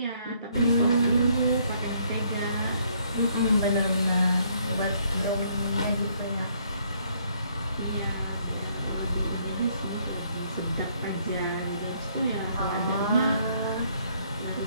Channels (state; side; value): inverted; both; correlation -0.67